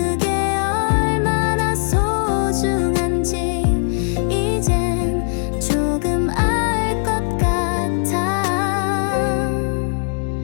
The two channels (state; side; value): silent; right; 59 dB below the other